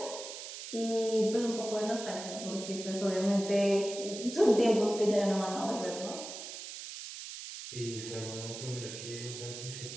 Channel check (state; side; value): noise; right; hiss, 10 dB below the sound